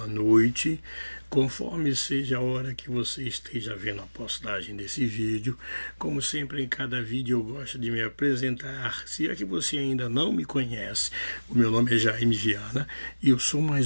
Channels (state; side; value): inverted; both; correlation -1.00